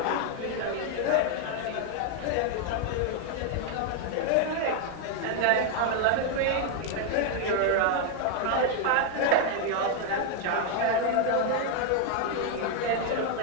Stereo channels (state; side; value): different; both; correlation 0.00